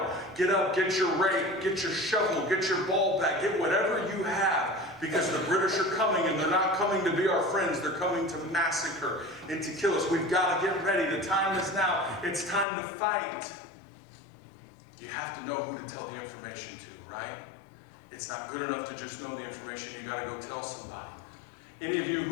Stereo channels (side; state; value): right; drops out; at 12.7 s